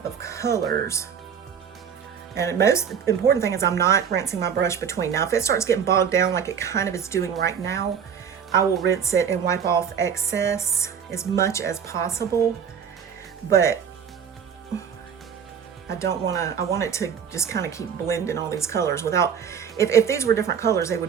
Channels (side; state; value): left; quieter; 7.5 dB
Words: of colors. And the most important thing is I'm not rinsing my brush between. Now, if it starts getting bogged down like it kind of is doing right now, I will rinse it and wipe off excess as much as possible. But I don't want to, I want it to just kind of keep blending all these colors without, if these were different colors, they